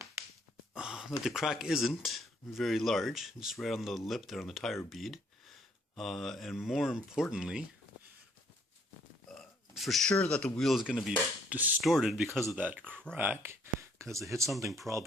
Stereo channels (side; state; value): both; normal; correlation 0.65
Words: that the crack isn't very large, just right on the lip there on the tire bead. And more importantly, for sure that the wheel is going to be distorted because of that crack, because it hit something,